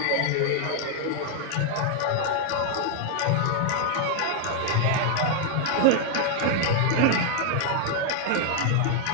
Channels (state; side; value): different; both; correlation 0.00